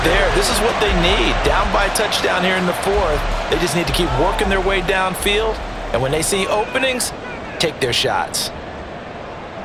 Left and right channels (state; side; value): identical; both; correlation 1.00